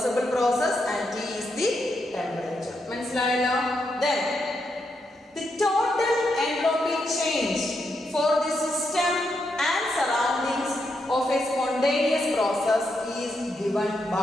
process and T is the temperature. മനസ്സിലായല്ലോ? Then the total entropy change for the system and surroundings of a spontaneous process is given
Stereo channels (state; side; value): normal; both; correlation 0.82